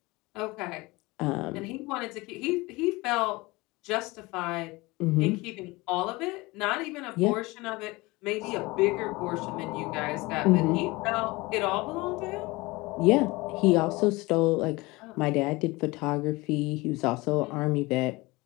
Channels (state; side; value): quieter; right; 22.5 dB